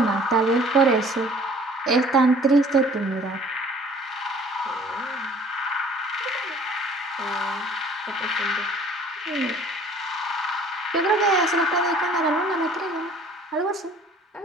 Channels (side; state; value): both; normal; correlation 0.53